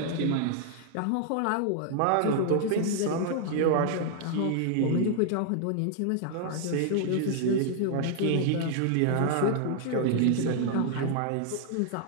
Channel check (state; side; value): different; both; correlation 0.00